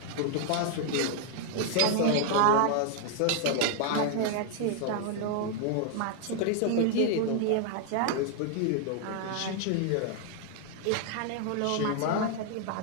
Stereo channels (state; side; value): different; both; correlation 0.00